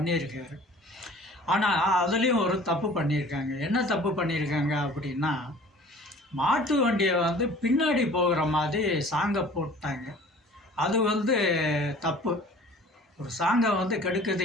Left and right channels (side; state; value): both; normal; correlation 0.47